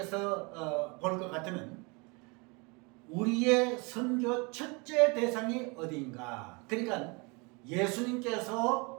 볼 것 같으면 우리의 선교 첫째 대상이 어디인가? 그러니까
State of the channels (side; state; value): left; quieter; 29.3 dB